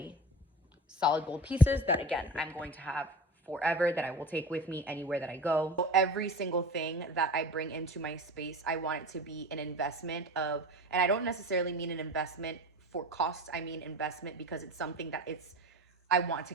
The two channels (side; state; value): both; normal; correlation 0.33